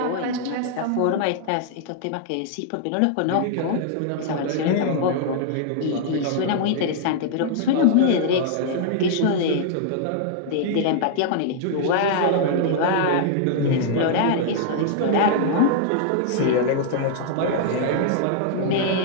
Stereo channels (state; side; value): different; both; correlation -0.01